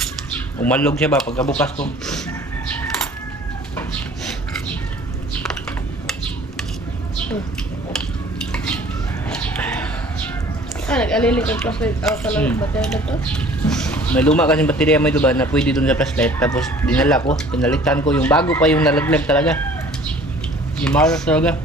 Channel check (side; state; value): both; normal; correlation 0.50